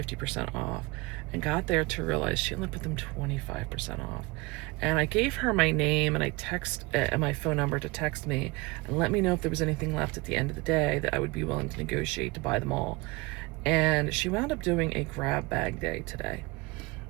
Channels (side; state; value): left; quieter; 24.3 dB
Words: 50% off, and got there to realize she only put them 25% off. And I gave her my name and my phone number to text me and let me know if there was anything left at the end of the day that I would be willing to negotiate to buy them all. And she wound up doing a grab bag day today.